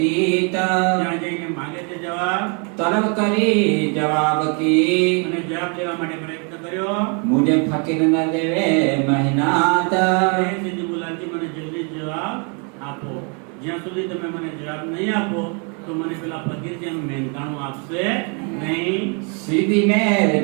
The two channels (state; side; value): quieter; left; 36.6 dB